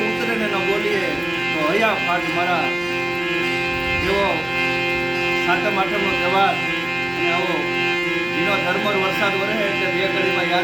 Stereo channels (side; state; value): right; noise; rumble, 29 dB below the sound